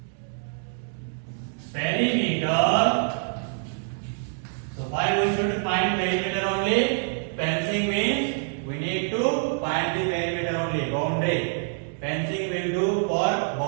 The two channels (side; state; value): left; silent; 61 dB below the other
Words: Perimeter. So why we should find perimeter only? Fencing means we need to find the perimeter only, boundary. Fencing will do for